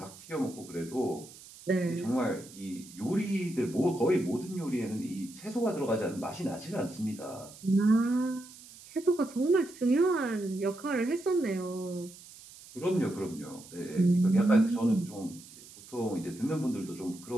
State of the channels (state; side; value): noise; right; hiss, 19 dB below the sound